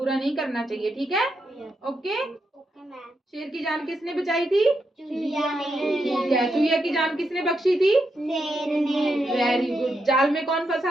नहीं करना चाहिए, ठीक है। ओके, शेर की जान किसने बचाई थी? चूहिया ने। ठीक है, चूहिया की जान किसने बख्शी थी? शेर ने। Very good. जाल में कौन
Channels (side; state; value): both; normal; correlation 0.83